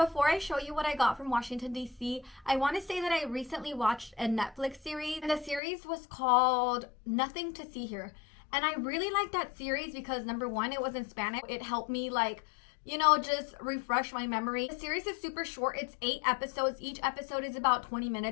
I show you what I got from Washington, D.C., I want to say that I recently watched a Netflix series, and the series was called Nothing to See Here. And I really liked that series because number one, it was in Spanish. It helped me just refresh my memory. The series is super short. It's 8 episodes. Each episode is about 20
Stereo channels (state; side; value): drops out; right; at 5.6 s